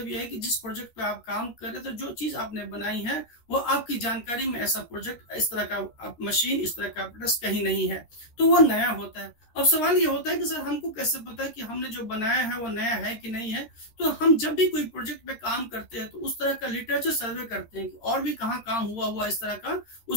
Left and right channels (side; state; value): right; late; 13 ms